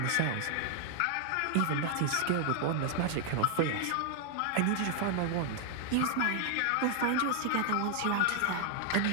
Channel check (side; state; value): both; different; correlation 0.00